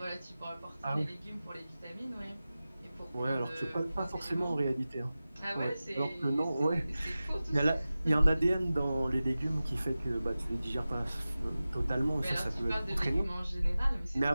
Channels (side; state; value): both; inverted; correlation -0.96